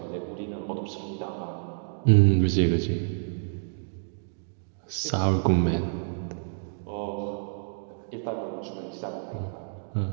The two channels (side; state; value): left; silent; digital silence